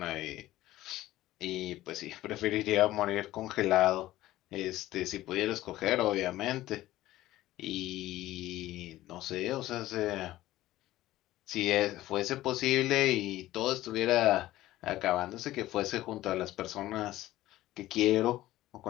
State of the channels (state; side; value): quieter; right; 15.6 dB